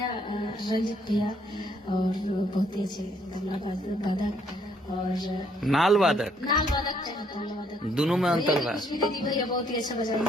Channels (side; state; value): both; normal; correlation 0.68